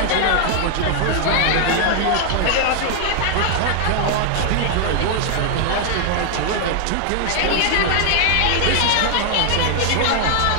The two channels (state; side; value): different; both; correlation 0.00